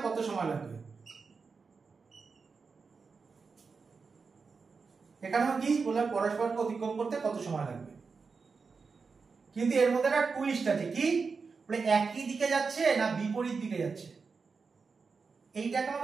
কত সময় লাগবে? এখানেও কি বলে পরস্পরকে অতিক্রম করতে কত সময় লাগবে, কিন্তু এর মধ্যে একটা টুইস্ট আছে। কি বলে একই দিকে যাচ্ছে না বিপরীত দিকে যাচ্ছে, এইটাকে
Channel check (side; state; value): left; quieter; 4.9 dB